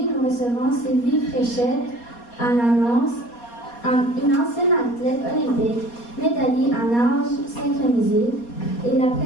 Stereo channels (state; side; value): late; right; 4.2 ms